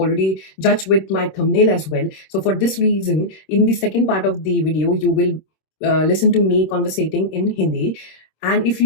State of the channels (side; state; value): right; late; 26 ms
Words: judged with my thumbnail as well. So for this reason, in the second part of the video, you will listen to me conversating in Hindi. And if